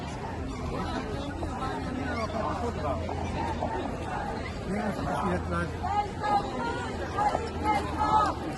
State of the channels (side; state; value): both; identical; correlation 1.00